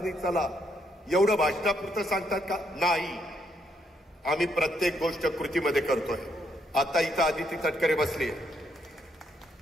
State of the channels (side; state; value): both; normal; correlation 0.74